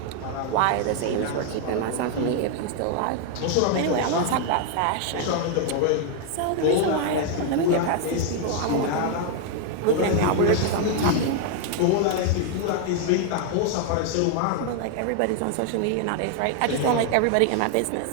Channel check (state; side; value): different; both; correlation 0.00